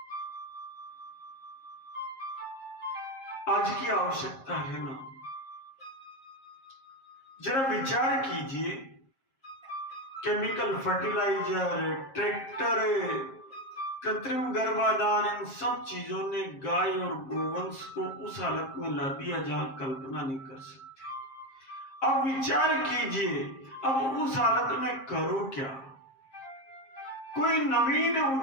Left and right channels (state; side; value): late; right; 7.5 ms